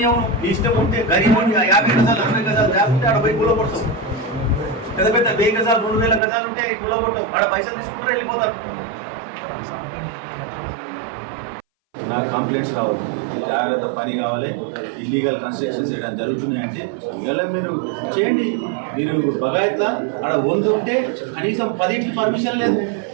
నీ ఇష్టం ఉంటే గరీబ్ 50 గజాలు 60 గజాలు లేకుంటే ఆడ పోయి కూలగొడతావు. పెద్ద పెద్ద 1000 గజాలు 2000 గజాలు ఉంటే కూలగొట్టవు. ఆడ పైసలు తీసుకుంటారు, వెళ్ళిపోతారు. నాకు కంప్లైంట్స్ రావు, జాగ్రత్త పని కావాలి. ఇల్లీగల్ కన్స్ట్రక్షన్స్ చేయడం జరుగుతున్నాయంటే ఇలా మీరు చేయండి. మీరు బగాయత్లా ఆడ 100 ఉంటే కనీసం 10 పర్మిషన్ లేదు,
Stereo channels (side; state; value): left; drops out; at 6.2 s